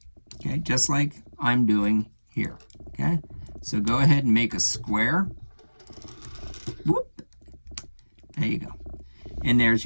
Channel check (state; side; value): inverted; both; correlation -1.00